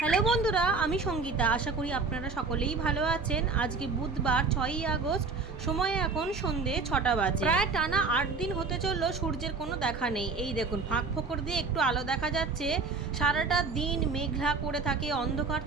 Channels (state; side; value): quieter; left; 4.4 dB